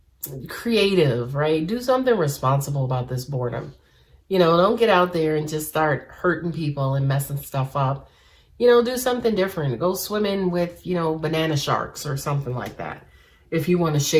creative, right? Do something responsible about this boredom. You know, don't get out there and just start hurting people and messing stuff up. You know, do something different. Go swimming with, you know, banana sharks or something like that, if you want to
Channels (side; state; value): both; identical; correlation 1.00